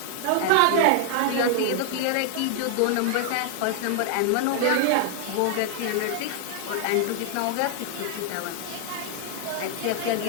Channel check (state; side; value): different; both; correlation 0.00